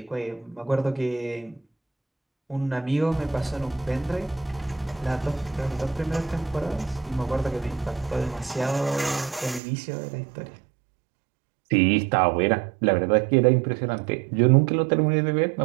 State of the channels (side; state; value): left; drops out; at 9.6 s